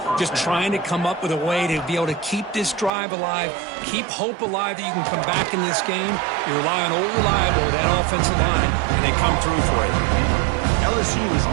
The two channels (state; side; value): drops out; left; at 2.9 s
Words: just trying to come up with a way to be able to keep this drive alive, keep hope alive that you can come back in this game. You rely on old reliable with that offensive line, and they come through for you. LSU is